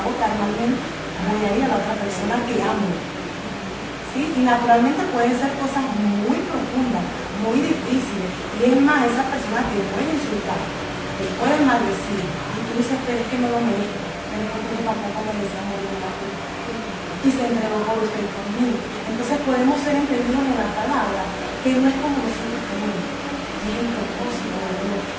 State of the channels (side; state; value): both; identical; correlation 1.00